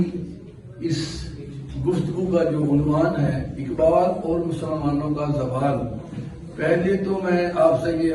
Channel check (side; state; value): both; identical; correlation 1.00